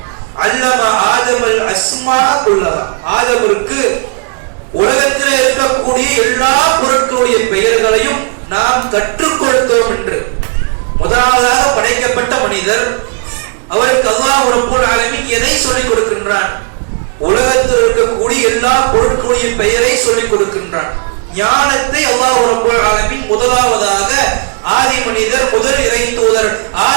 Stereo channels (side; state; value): left; quieter; 34.6 dB